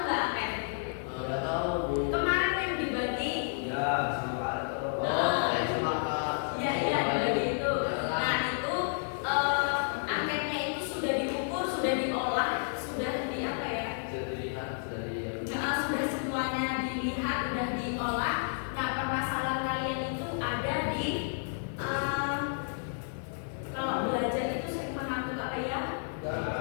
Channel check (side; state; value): right; silent; digital silence